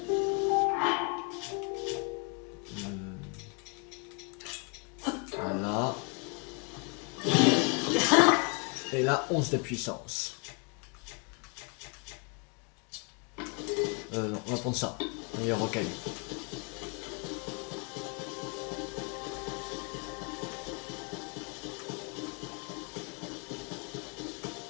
Voilà. Et là, 11 de puissance. Non, on va prendre ça. Meilleur rocaille.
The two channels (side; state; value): right; quieter; 35.0 dB